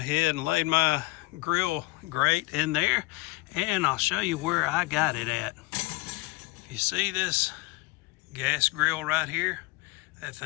and laid my grill grate in there, and I'll show you where I got it at. You see this gas grill right here? That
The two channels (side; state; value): right; quieter; 22.9 dB